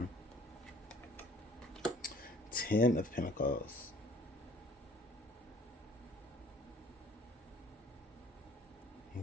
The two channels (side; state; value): both; normal; correlation 0.54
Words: Ten of Pentacles.